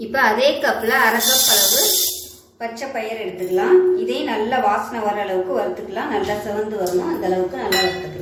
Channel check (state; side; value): identical; both; correlation 1.00